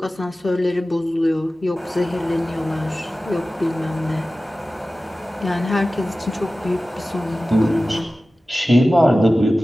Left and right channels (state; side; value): normal; both; correlation 0.96